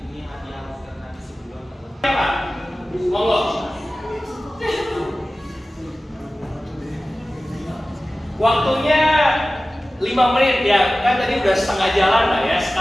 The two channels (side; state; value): both; normal; correlation 0.96